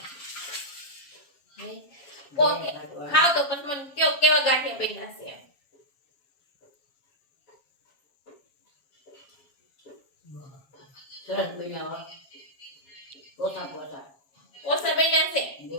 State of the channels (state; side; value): late; right; 7.3 ms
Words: ખાવ તો પછી મને કયો કેવા ગાંઠિયા બન્યા છે સરસ બન્યા હો. પોતા પોતા ઓસા બન્યા છે બહુ